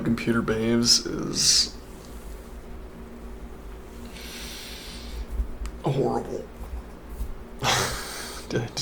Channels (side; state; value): both; identical; correlation 1.00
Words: behaves is horrible. I